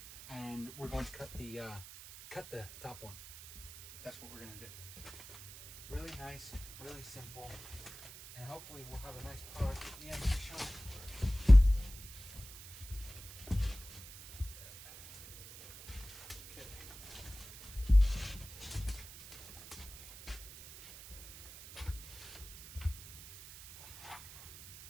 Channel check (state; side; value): noise; right; hiss, 15 dB below the sound